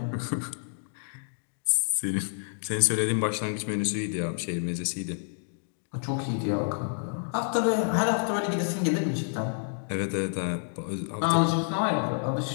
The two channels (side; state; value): right; silent; digital silence